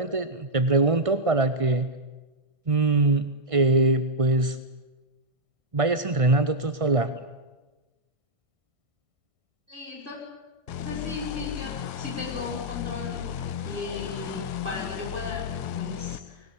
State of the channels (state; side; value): late; left; 1.5 ms